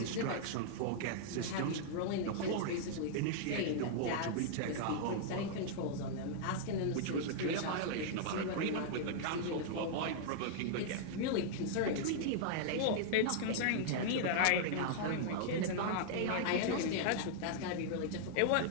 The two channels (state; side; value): different; both; correlation -0.01